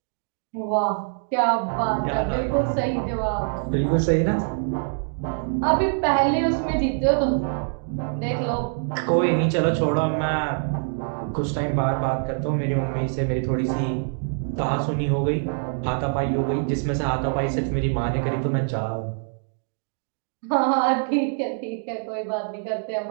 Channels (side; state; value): left; silent; 62 dB below the other